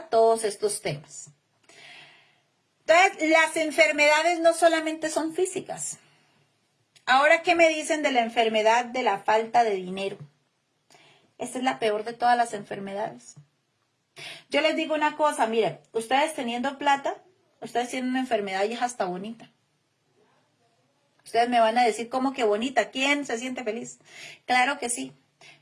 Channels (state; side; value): identical; both; correlation 1.00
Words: todos estos temas. Entonces, las enfermedades no solamente son físicas. Ahora, ¿qué me dicen de la enfermedad de la falta de dinero? Esta es la peor de todas las enfermedades. Yo les digo una cosa, miren, ustedes teniendo plata, ustedes tienen una enfermedad y es hasta bonita. Ustedes me van a decir, ¿cómo que bonita? ¿Quién se siente feliz? Claro que sí,